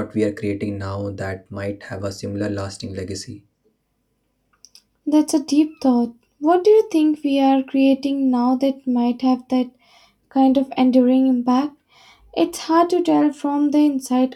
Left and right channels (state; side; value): identical; both; correlation 1.00